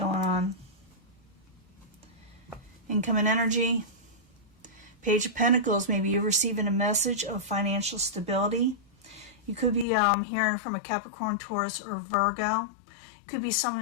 on. Incoming energy. Page of Pentacles. Maybe you're receiving a message of financial stability. You could be hearing from a Capricorn, Taurus, or Virgo. It could be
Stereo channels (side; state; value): right; drops out; at 9.9 s